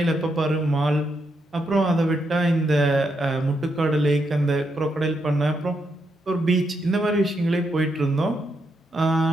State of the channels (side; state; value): both; normal; correlation 0.81